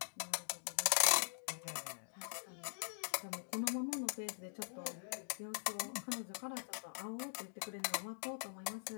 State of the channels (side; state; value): right; silent; digital silence